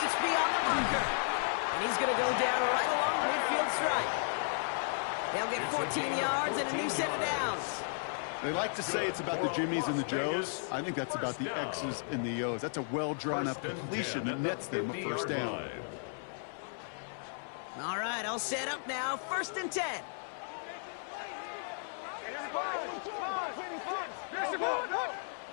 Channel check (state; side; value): silent; right; 55 dB below the other